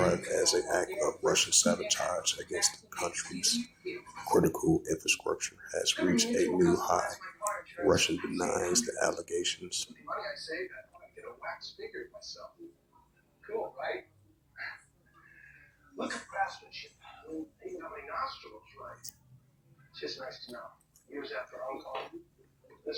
as an act of Russian sabotage against the country's critical infrastructure has reached a new high. Russia denies the allegations. Cool, right? Look at craftsmanship. Even how many nostrils, right? It's just nice to know. Years after Uncle,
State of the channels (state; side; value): identical; both; correlation 1.00